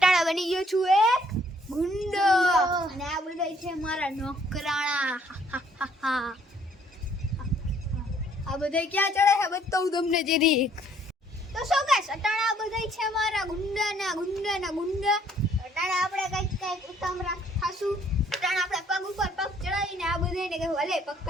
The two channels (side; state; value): both; normal; correlation 0.64